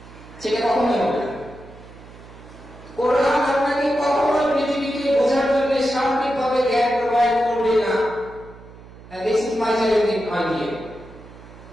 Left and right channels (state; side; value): noise; right; hum, 19 dB below the sound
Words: সেটা কখনোই হবে না। কোরআন আপনাকে কখনোই পৃথিবীকে বোঝার জন্য সার্বিকভাবে জ্ঞান প্রোভাইড করবে না। This is my challenging idea.